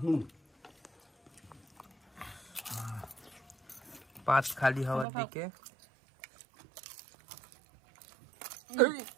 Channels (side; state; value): left; drops out; at 5.1 s